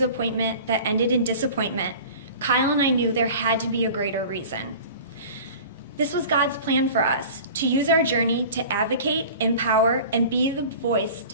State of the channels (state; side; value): inverted; both; correlation -0.40